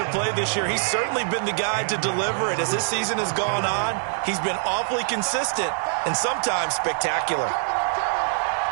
a play this year, he's certainly been the guy to deliver it. As this season has gone on, he's been awfully consistent and sometimes spectacular.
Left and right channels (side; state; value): left; silent; digital silence